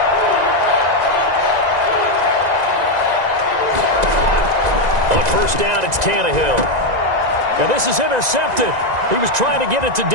On first down, it's Tannehill. And this is intercepted. He was trying to get it to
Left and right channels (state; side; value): late; left; 1.9 ms